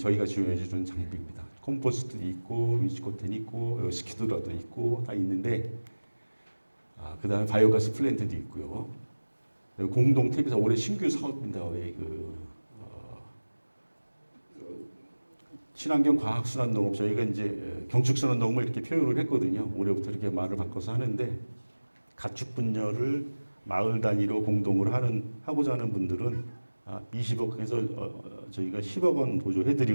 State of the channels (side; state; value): both; inverted; correlation -1.00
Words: 지원해 주는 장비입니다. 컴포스트도 있고, 위치코텐 있고, 스키드라도 있고, 다 있는데, 그 다음에 바이오가스 플랜트도 있고요. 공동 TV사 올해 신규 사업입니다. 친환경 과학순환 농업, 저희가 이제 경축순환 농업을 이렇게 표현을 했거든요. 올해부터 이렇게 말을 바꿔서 하는데, 가축 분야를 마을 단위로 공동으로 하고자 하는 분들은 20억 해서 저희가 10억 원